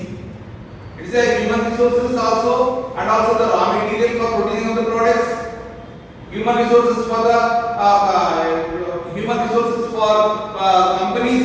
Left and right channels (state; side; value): identical; both; correlation 1.00